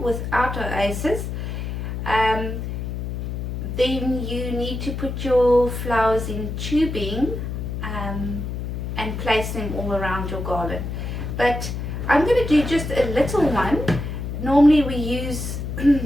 without oasis, then you need to put your flowers in tubing and place them all around your garland. But I'm going to do just a little one. Normally we use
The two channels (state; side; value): noise; left; hum, 5 dB below the sound